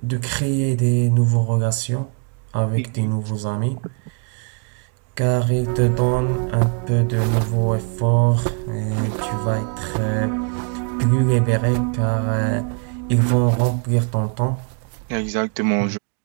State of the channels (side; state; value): left; quieter; 38.0 dB